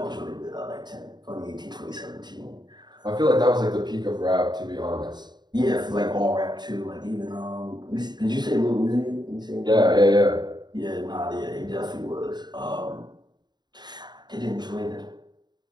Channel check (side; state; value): left; late; 0.21 ms